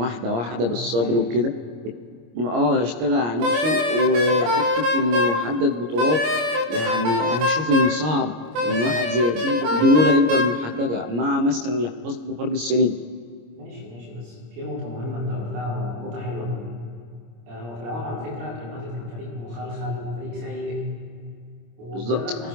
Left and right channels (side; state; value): left; late; 26 ms